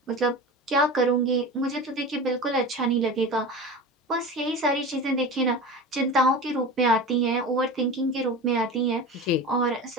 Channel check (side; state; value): both; normal; correlation 0.31